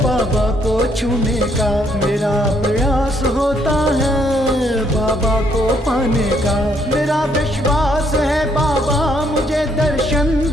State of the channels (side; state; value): both; normal; correlation 0.70